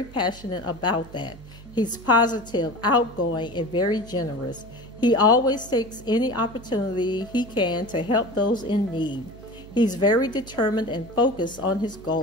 passionate about that. He's positive, outgoing, and very generous. He always takes any opportunity he can to help those in need. He's very determined and focused on his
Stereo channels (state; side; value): noise; right; hum, 18 dB below the sound